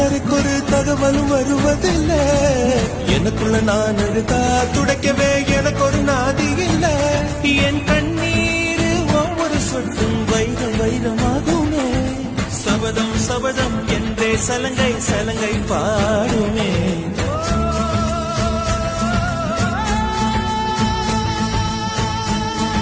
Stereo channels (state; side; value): identical; both; correlation 1.00